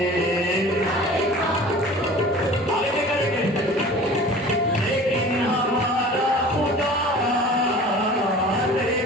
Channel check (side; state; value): both; normal; correlation 0.42